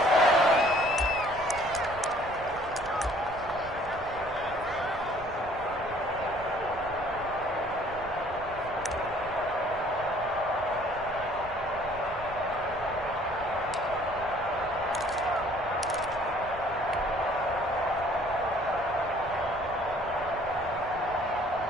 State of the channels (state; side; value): noise; right; rumble, 16 dB below the sound